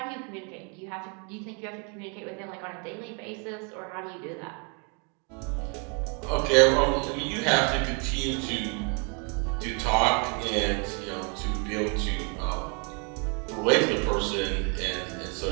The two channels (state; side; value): quieter; left; 36.3 dB